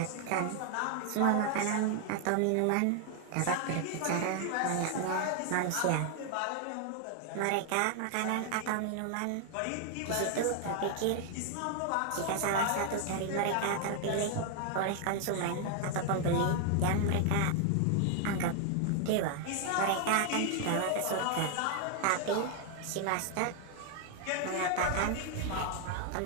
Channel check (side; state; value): both; different; correlation 0.00